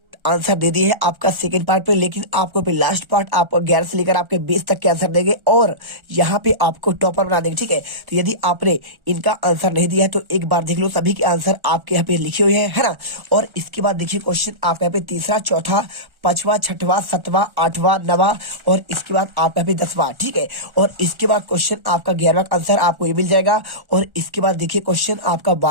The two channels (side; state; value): left; late; 1.4 ms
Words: आंसर दे दिए है आपका सेकंड पार्ट पे, लेकिन आपको पे लास्ट पार्ट आपको 11 से लेकर आपके 20 तक के आंसर देंगे और यहाँ पे आपको टॉपर बना देंगे। ठीक है, तो यदि आपने इनका आंसर नहीं दिया है तो एक बार देख लो, सभी के आंसर आपके यहाँ पे लिखे हुए हैं, है ना। और इसके बाद देखिए क्वेश्चन आपका यहाँ पे तीसरा, चौथा, पांचवा, छठवा, सातवां, आठवां, नवा और इसके बाद आपका भी 10वां। ठीक है, और इसके बाद क्वेश्चन आपका 11वां का आंसर आपको ये मिल जाएगा और इसके बाद देखिए क्वेश्चन आपका